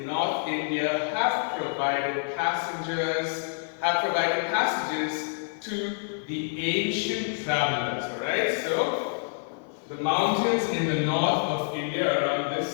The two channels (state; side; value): silent; right; 60 dB below the other